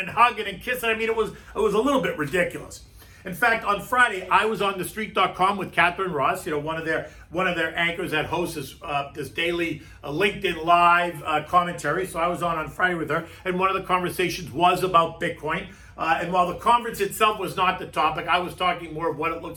hugging and kissing. I mean, it was a little bit ridiculous. In fact, on Friday, I was on TheStreet.com with Catherine Ross, one of their anchors that hosts this daily LinkedIn Live commentary. So I was on Friday with her, and one of the conversations was about Bitcoin. And while the conference itself was not the topic, I was talking more of what it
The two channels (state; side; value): identical; both; correlation 1.00